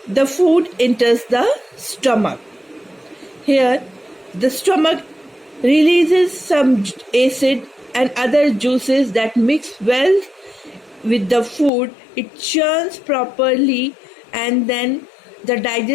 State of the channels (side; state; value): right; drops out; at 11.7 s